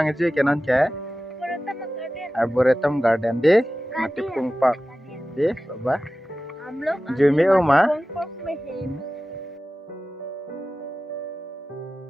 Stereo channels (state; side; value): normal; both; correlation 0.95